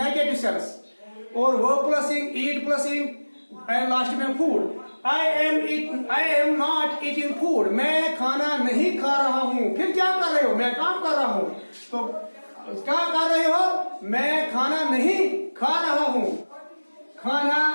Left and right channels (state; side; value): inverted; both; correlation -1.00